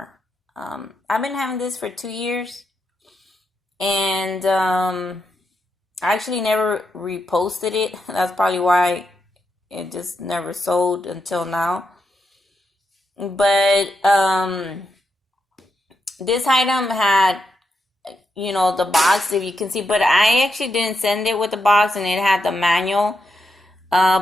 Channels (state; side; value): normal; both; correlation 0.84